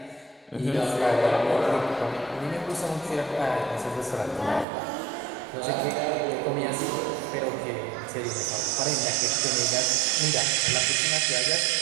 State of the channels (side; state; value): left; drops out; at 4.7 s